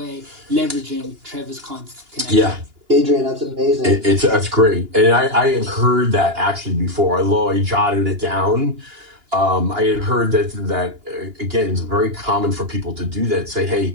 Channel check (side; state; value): left; late; 2.9 ms